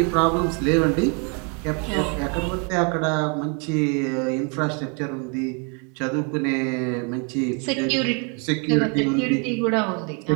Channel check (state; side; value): quieter; left; 36.3 dB